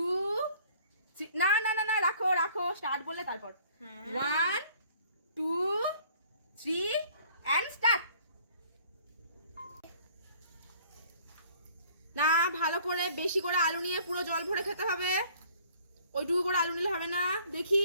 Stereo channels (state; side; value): inverted; both; correlation -0.56